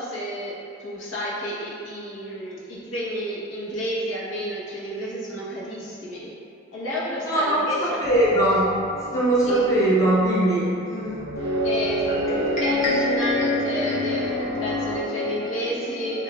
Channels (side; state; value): both; normal; correlation 0.34